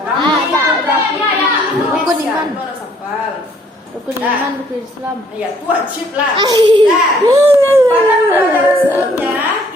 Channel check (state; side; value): normal; both; correlation 0.63